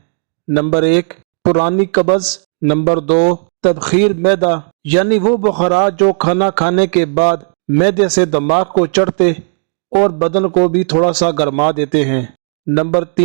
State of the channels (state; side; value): silent; left; digital silence